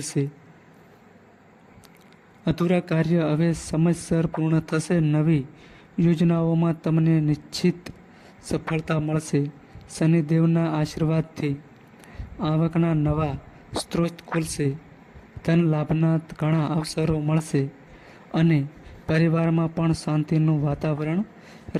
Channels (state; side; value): identical; both; correlation 1.00